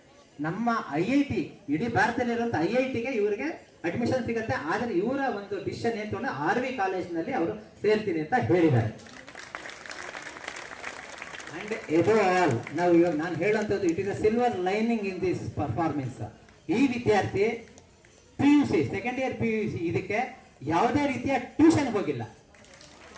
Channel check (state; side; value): identical; both; correlation 1.00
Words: ನಮ್ಮ IIT, ಇಡೀ ಭಾರತದಲ್ಲಿರುವಂಥ IITಗೆ ಇವರಿಗೆ ಅಡ್ಮಿಷನ್ ಸಿಗುತ್ತೆ. ಆದರೆ ಇವರ ಒಂದು ಡಿಸಿಷನ್ ಏನು ತಗೊಂಡು RV ಕಾಲೇಜಿನಲ್ಲಿ ಅವರು ಸೇರ್ತೀನಿ ಅಂತ ಹೇಳಿದ್ದಾರೆ. ಅಂಡ್ ಎಬವ್ ಆಲ್, ನಾವು ಇವಾಗ ನಾನು ಹೇಳುವಂಥದ್ದು, it is a silver lining in this performance. ಈ ವಿದ್ಯಾರ್ಥಿ PUC ಸೆಕೆಂಡ್ ಇಯರ್ PUC ಇದಕ್ಕೆ ಯಾವುದೇ ರೀತಿಯ ಟ್ಯೂಷನ್ ಹೋಗಿಲ್ಲ.